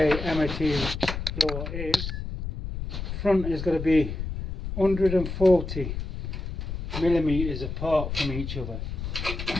MOT law is front is going to be 140 millimeters apart from each other.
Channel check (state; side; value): noise; left; rumble, 5 dB below the sound